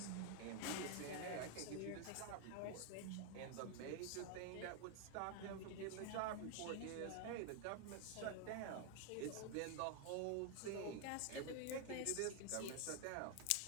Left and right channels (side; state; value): both; different; correlation 0.00